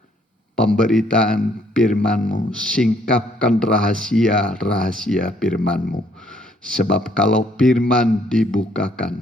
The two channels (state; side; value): normal; both; correlation 0.66